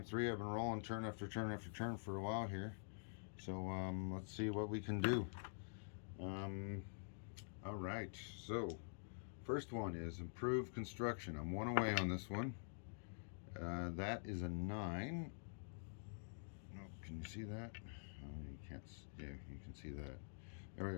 3 I've been rolling turn after turn after turn for a while here. So let's see what we can do. All right. So first one is improved construction. I'm 1 away on this one. That is a 9. No, can you see that? You can't. Yeah, you can see that. There we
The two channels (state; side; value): silent; right; digital silence